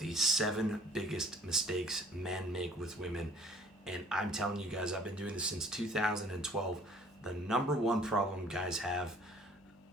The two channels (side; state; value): both; normal; correlation 0.54